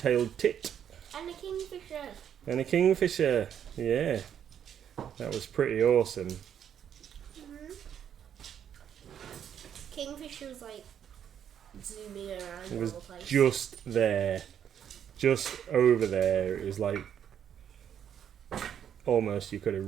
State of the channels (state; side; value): quieter; left; 9.1 dB